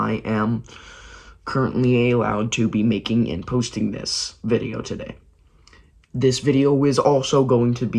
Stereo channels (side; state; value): both; identical; correlation 1.00